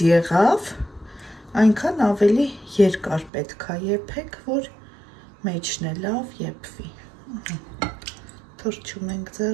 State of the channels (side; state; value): left; drops out; at 3.3 s